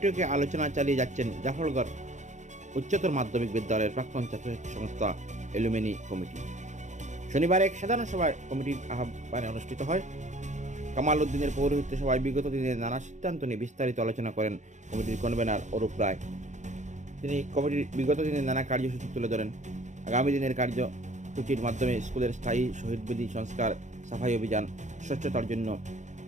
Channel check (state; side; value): late; left; 0.35 ms